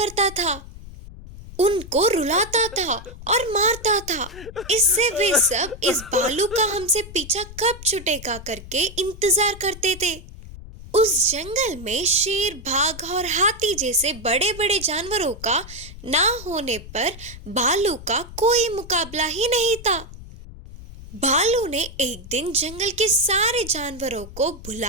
था, उनको रुलाता था और मारता था। इससे वे सब इस भालू का हमसे पीछा कब छूटेगा करके इंतजार करते थे। उस जंगल में शेर, बाघ और हाथी जैसे बड़े बड़े जानवरों का ना होने पर भालू का कोई मुकाबला ही नहीं था। भालू ने एक दिन जंगल के सारे जानवरों को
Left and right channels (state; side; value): noise; left; rumble, 15 dB below the sound